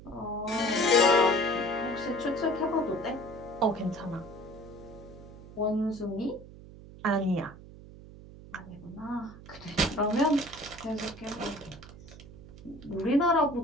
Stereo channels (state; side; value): noise; right; hum, 17 dB below the sound